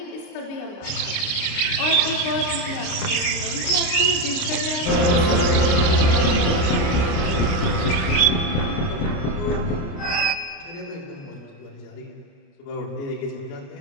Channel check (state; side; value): late; right; 29 ms